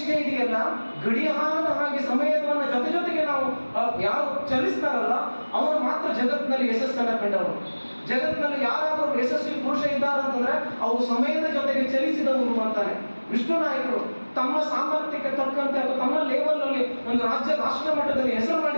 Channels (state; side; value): inverted; both; correlation -1.00